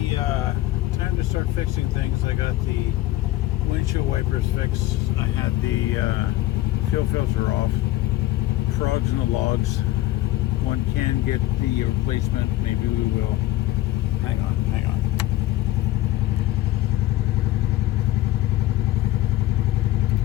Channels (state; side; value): quieter; right; 15.7 dB